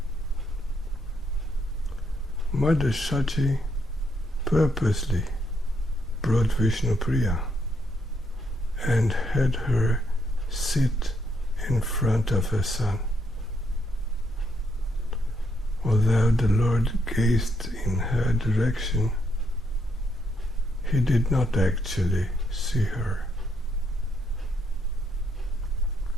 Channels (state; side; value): normal; both; correlation 0.75